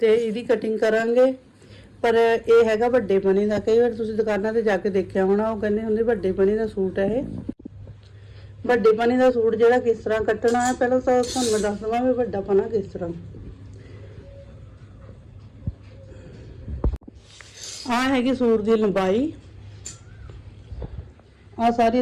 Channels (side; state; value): both; identical; correlation 1.00